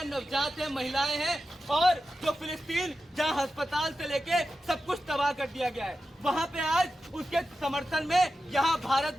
नवजात हैं, महिलाएं हैं। और जो फिलिस्तीन जहां अस्पताल से लेके सब कुछ तबाह कर दिया गया है, वहां पे आज उसके समर्थन में यहाँ भारत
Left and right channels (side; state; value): both; normal; correlation 0.92